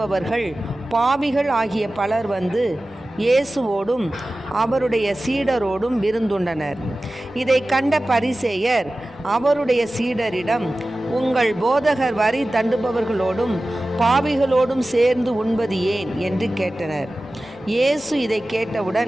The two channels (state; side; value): noise; left; rumble, 28 dB below the sound